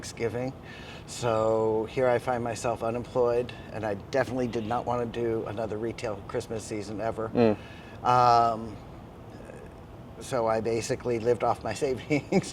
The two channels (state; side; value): identical; both; correlation 1.00